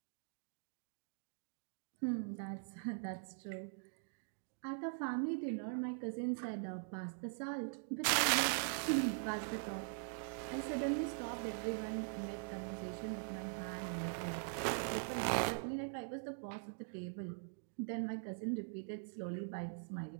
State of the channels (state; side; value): silent; left; digital silence